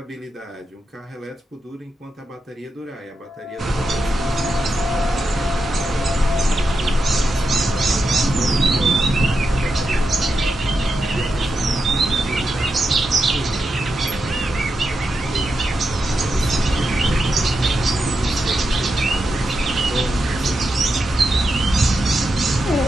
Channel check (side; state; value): both; normal; correlation 0.87